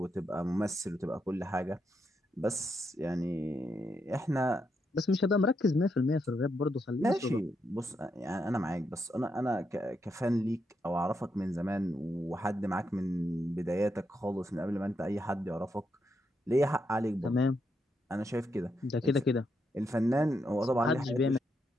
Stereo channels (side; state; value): both; normal; correlation 0.81